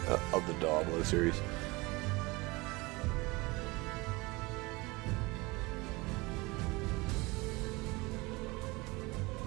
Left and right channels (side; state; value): left; quieter; 23.7 dB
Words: the Diablo series.